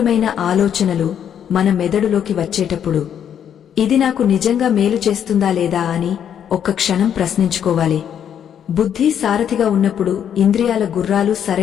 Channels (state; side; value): quieter; right; 9.0 dB